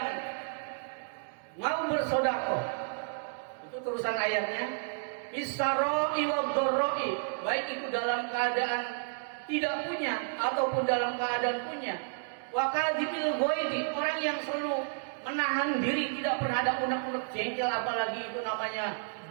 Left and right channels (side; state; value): left; silent; digital silence